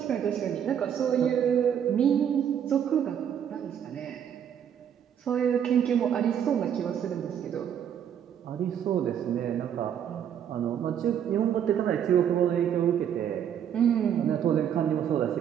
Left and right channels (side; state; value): left; quieter; 9.0 dB